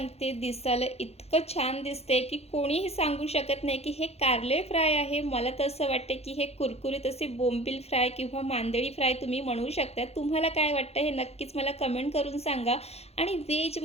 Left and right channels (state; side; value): late; right; 0.30 ms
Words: दिसायला इतकं छान दिसते की कोणीही सांगू शकत नाही की हे कारले फ्राय आहे. मला तर असं वाटतं की हे कुरकुरीत असे बोंबील फ्राय किंवा मांदेळी फ्राय तुम्ही म्हणू शकता. तुम्हाला काय वाटतं हे नक्कीच मला कमेंट करून सांगा. आणि